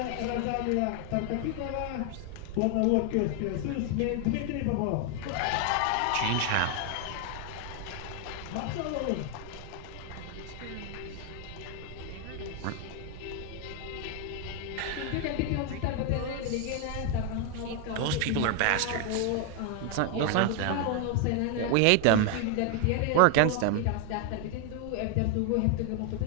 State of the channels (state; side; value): different; both; correlation 0.00